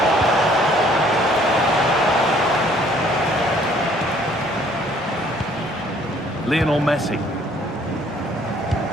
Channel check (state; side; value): normal; both; correlation 0.60